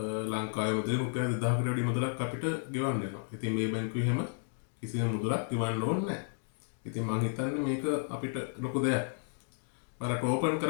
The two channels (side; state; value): right; silent; 56 dB below the other